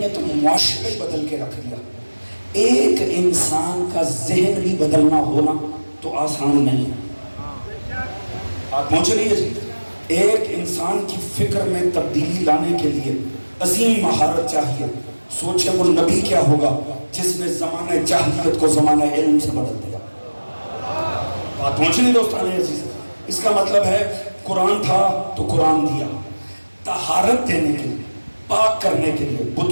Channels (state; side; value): inverted; both; correlation -1.00